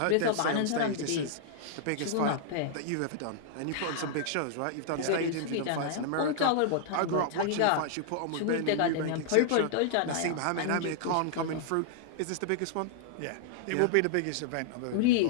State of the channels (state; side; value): different; both; correlation -0.01